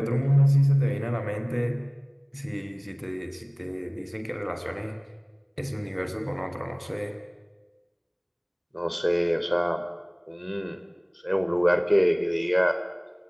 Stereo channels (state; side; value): identical; both; correlation 1.00